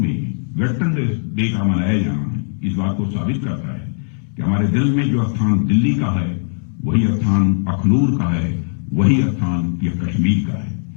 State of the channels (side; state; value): right; silent; digital silence